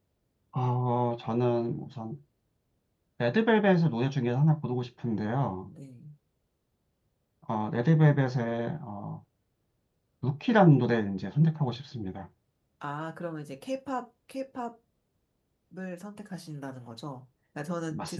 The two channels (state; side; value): identical; both; correlation 1.00